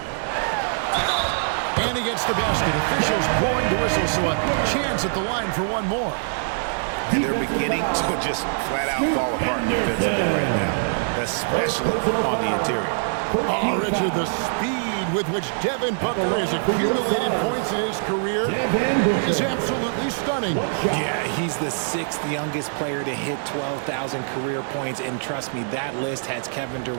And he gets the basket. Officials blowing the whistle, so a chance at the line for one more. And they're beginning to just flat out fall apart defensively right now, especially on the interior. Oh, Richard, the speed with which Devin Booker has accumulated points in his career is absolutely stunning. Yeah, he's the 6th youngest player to hit 12,000 career points, and trust me, that list has Kevin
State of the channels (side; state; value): left; silent; 63 dB below the other